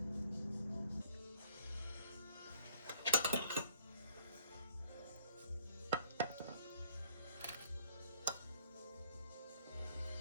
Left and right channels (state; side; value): inverted; both; correlation -0.59